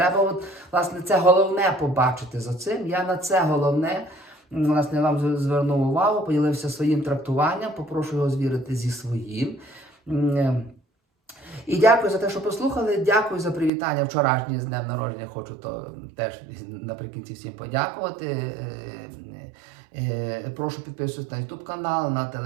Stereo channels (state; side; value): drops out; left; at 13.7 s